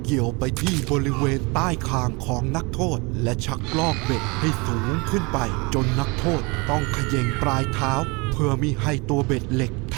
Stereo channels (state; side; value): quieter; left; 27.8 dB